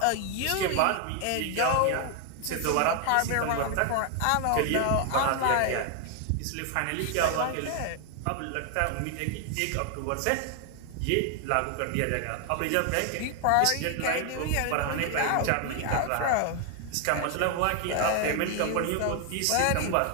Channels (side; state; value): both; different; correlation 0.00